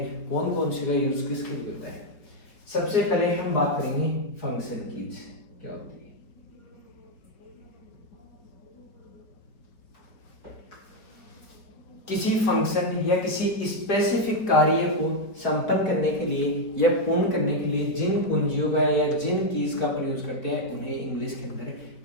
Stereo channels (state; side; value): late; right; 4.4 ms